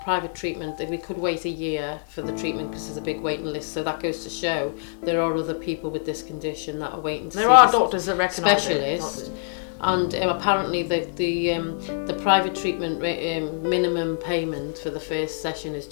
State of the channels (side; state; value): right; silent; 62 dB below the other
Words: private treatment. We could wait a year for the treatment because there's a big waiting list, so that goes to show there are other people with this condition that are waiting to see there are doctors that recognise specialist. And apparently the private treatment minimum payment for the first session is